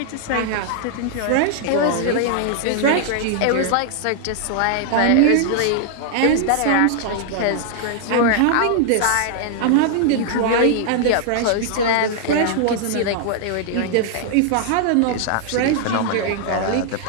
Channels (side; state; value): both; different; correlation 0.00